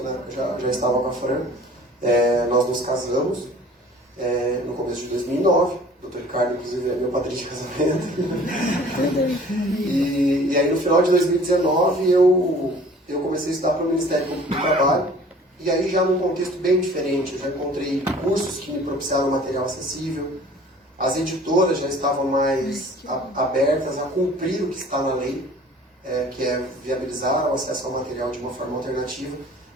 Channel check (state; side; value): normal; both; correlation 0.49